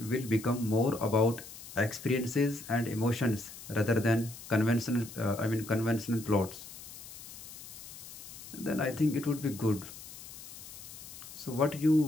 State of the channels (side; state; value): left; noise; hiss, 14 dB below the sound